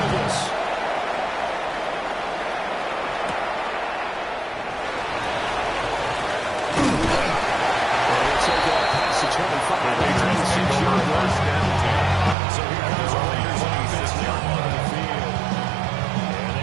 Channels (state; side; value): drops out; left; at 12.4 s